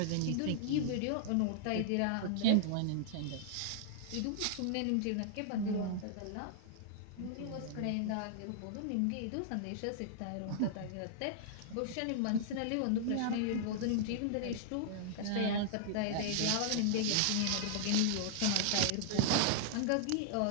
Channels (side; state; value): both; different; correlation -0.01